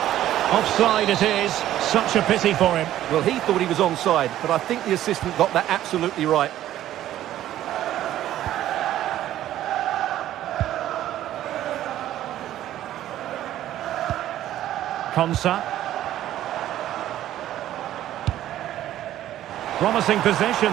Offside it is. Such a pity for him. Well, he thought he was onside, but I think the assistant got that absolutely right. Konsa. Promising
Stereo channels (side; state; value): left; quieter; 12.9 dB